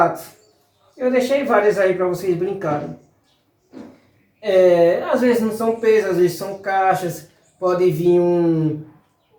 Eu deixei várias aí para vocês brincarem. Às vezes não são pesos, às vezes são caixas, pode vir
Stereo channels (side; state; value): both; identical; correlation 1.00